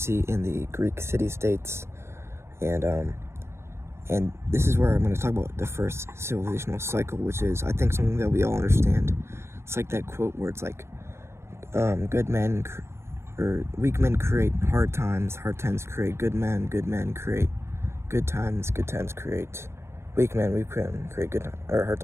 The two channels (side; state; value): left; late; 0.13 ms